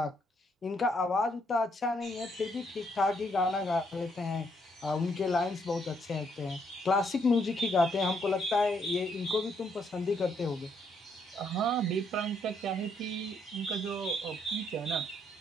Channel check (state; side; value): normal; both; correlation 0.72